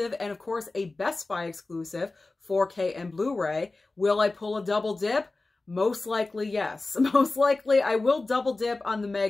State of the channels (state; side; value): quieter; right; 3.3 dB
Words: and, of course, a Best Buy exclusive, 4K and Blu-ray. Will I pull a double dip? Most likely, yes. Most likely, I will double dip on the